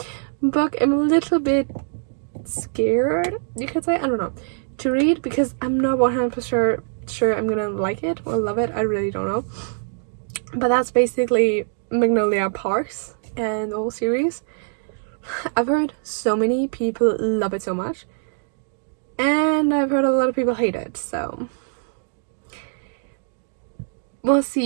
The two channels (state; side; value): silent; left; digital silence